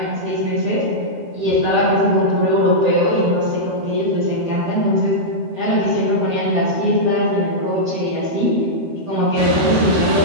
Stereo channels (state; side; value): late; left; 12 ms